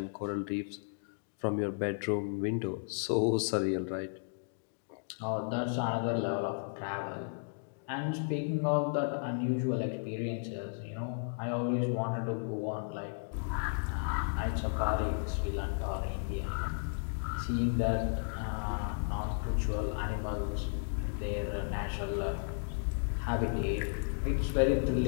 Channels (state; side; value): silent; right; digital silence